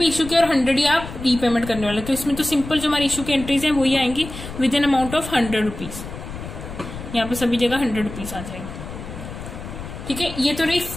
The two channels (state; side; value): noise; left; rumble, 11 dB below the sound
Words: इशू किया और 100 ही आप रीपेमेंट करने वाले. तो इसमें तो सिंपल जो हमारी इशू की एंट्रीज है वही आएंगी with an amount of 100 rupees. यहाँ पे सभी जगह 100 रुपीज आ जाएंगे. ठीक है, ये तो रही